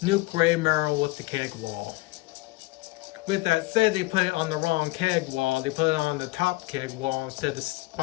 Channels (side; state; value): right; quieter; 22.1 dB